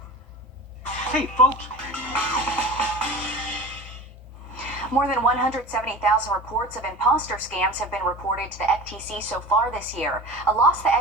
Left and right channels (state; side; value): normal; both; correlation 0.35